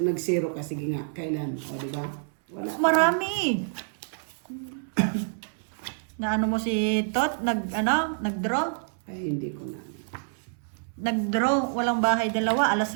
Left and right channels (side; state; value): left; silent; 60 dB below the other